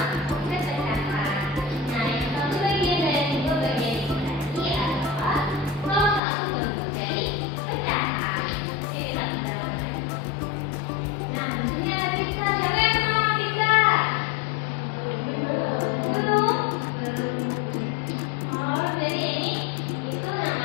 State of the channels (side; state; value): right; drops out; at 6.2 s